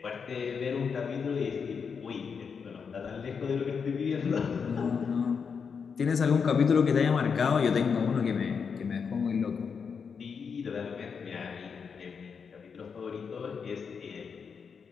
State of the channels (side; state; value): right; quieter; 6.1 dB